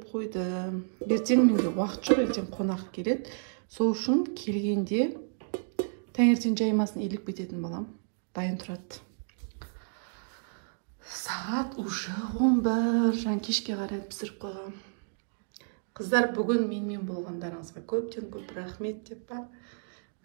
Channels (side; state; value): left; silent; digital silence